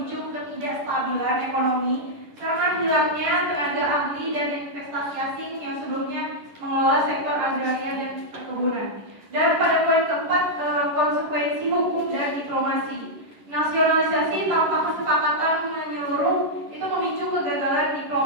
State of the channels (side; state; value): left; late; 11 ms